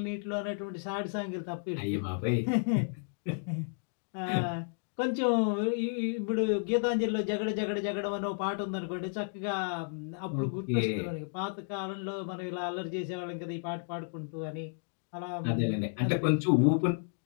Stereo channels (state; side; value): silent; right; digital silence